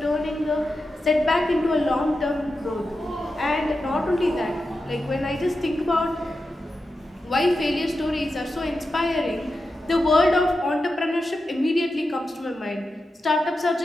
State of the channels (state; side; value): normal; both; correlation 0.90